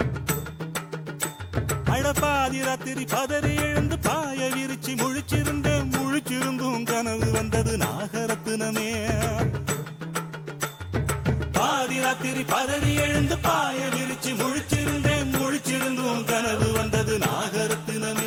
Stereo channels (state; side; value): identical; both; correlation 1.00